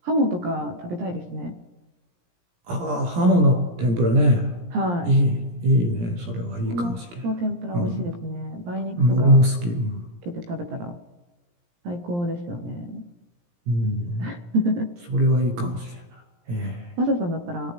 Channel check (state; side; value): late; left; 17 ms